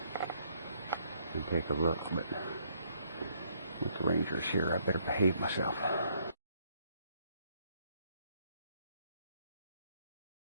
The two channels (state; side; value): inverted; both; correlation -0.69